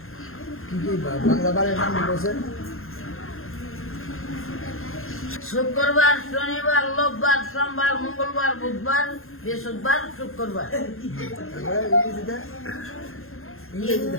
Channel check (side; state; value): right; late; 0.61 ms